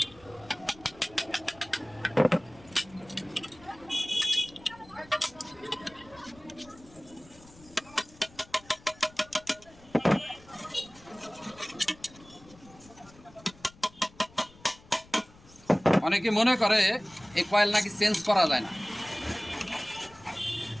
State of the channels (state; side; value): noise; left; rumble, 24 dB below the sound